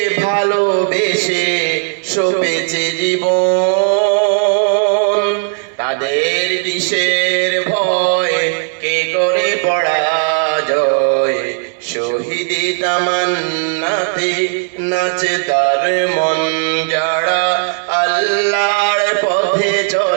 ভালোবেসে সপেছে জীবন, তাদের কিসের ভয়, কে করে পরাজয়? শহীদি তামান্নাতে নাচে তার মন। যারা আল্লাহর পথে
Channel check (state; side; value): silent; left; digital silence